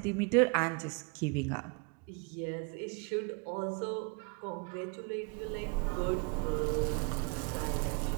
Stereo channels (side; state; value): left; quieter; 31.9 dB